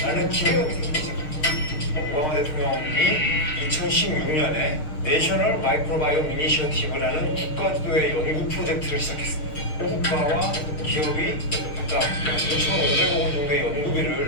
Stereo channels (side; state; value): right; late; 6.5 ms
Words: 기대감이 생기기 시작합니다. 오바마 대통령이 2016년에 내셔널 마이크로바이옴 이니셔티브라는 국가주도의 연구 프로젝트를 시작했습니다. 국가와 기업이 각각 2,500억 원 정도의 연구비를